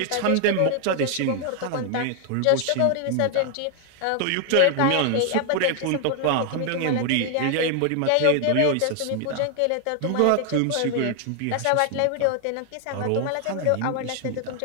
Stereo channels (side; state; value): both; different; correlation 0.00